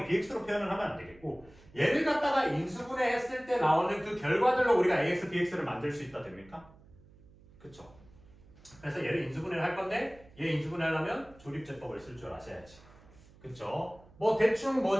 bx로 표현을 하면 안 되겠고 얘를 갖다가 인수분해했을 때 나오는 그 결과들로 우리가 ax, bx를 만들 수 있다 됩니까? 그쵸? 그래서 얘를 인수분해를 할 건데 얘 인수분해하려면 조립제법을 쓸 줄 아셔야지. 그쵸? 뭐 대충 뭐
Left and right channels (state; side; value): noise; right; hum, 25 dB below the sound